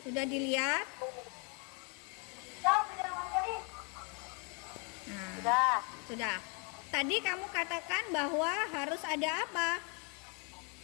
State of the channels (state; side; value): quieter; right; 35.6 dB